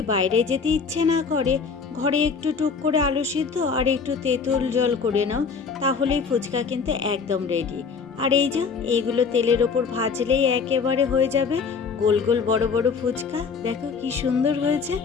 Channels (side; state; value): right; quieter; 5.5 dB